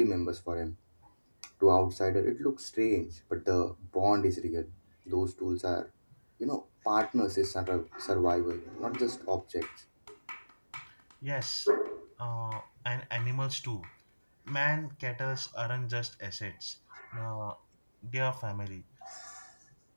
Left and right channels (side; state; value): both; inverted; correlation -1.00